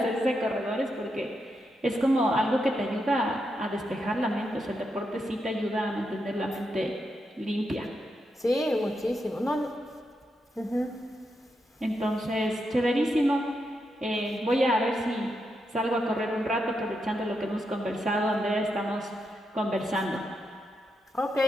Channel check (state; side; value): normal; both; correlation 0.84